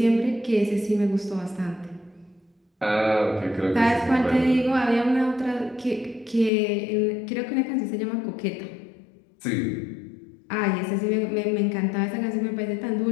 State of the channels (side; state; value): right; drops out; at 6.5 s